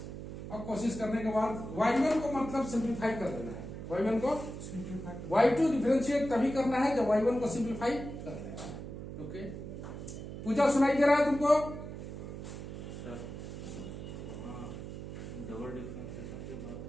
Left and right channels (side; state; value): right; noise; hum, 9 dB below the sound